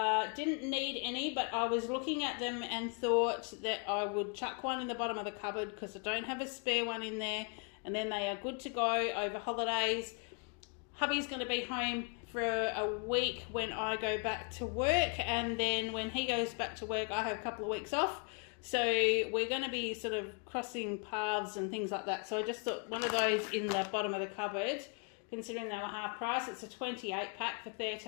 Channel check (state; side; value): quieter; right; 38.3 dB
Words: Didn't need any, but I was looking at them and thought that I would chuck one in the bottom of the cupboard because I don't have a spare one in there, and then they are good to go over holidays. Hubby's going to be home for a week when I go back to work, and then when he goes back to work I have a couple of weeks off, so we're going to be sort of crossing paths and things like that. So I just thought one of those in the bottom of the cupboard, considering they were half price. It's a 28-pack for